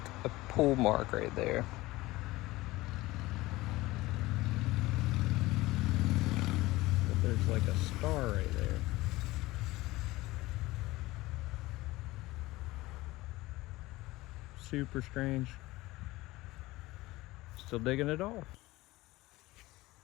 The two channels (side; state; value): right; quieter; 19.3 dB